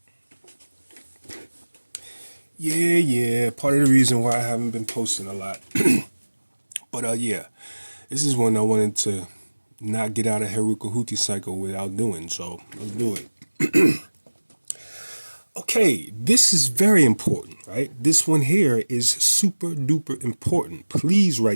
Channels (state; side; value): inverted; both; correlation -1.00